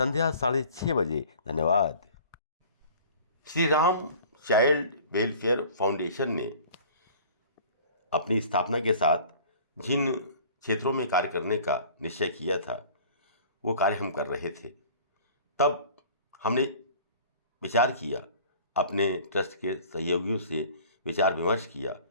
6:30 बजे। धन्यवाद। Shri Ram child welfare foundation ने अपनी स्थापना के साथ जिन क्षेत्रों में कार्य करने का निश्चय किया था वो कार्य हम कर रहे थे। तब हमने विचार किया, अपने ट्रस्ट के सहयोगियों से विचार विमर्श किया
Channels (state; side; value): inverted; both; correlation -0.47